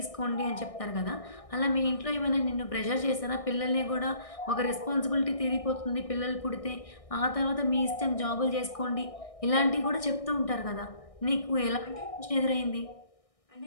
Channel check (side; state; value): right; late; 1.6 ms